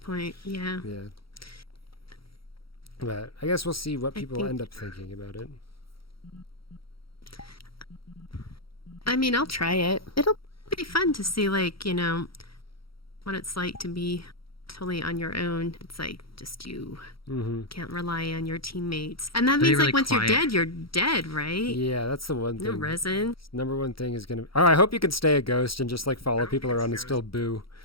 Yeah. Yeah. But I guess we'll see what people end up thinking about it. I mean, I'll try it. It'll be fun to see, like, you know, what it's like to be totally on your own. It's like just you can't rely on your teammates. And that means really like once quiet. you're dead, right? Yeah, that's the one No thing. resin. Number one thing is gonna. Oh, I hope you can stay a ghost and just like follow people around and still boo.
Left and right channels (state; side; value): late; right; 0.75 ms